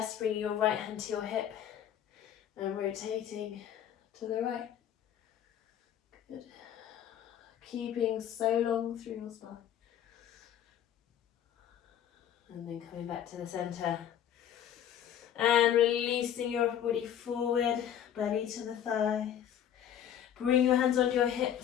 bringing your right hand to your hip and rotating to the right. Good. Keeping so long through your spine. And then coming back to the center and releasing your upper body forward, belly to the thighs. Bring your hands onto your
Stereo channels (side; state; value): right; quieter; 9.9 dB